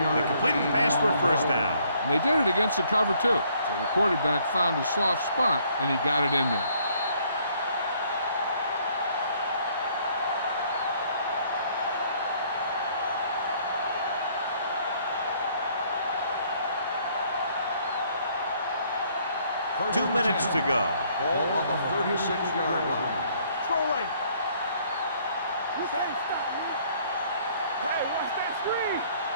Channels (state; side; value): inverted; both; correlation -0.64